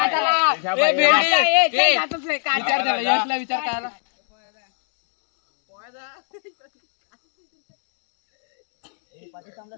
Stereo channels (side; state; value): right; silent; digital silence